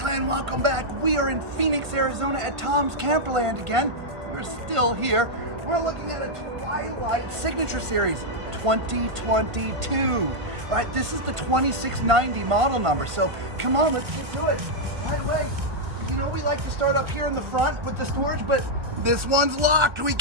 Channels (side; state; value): left; late; 1.5 ms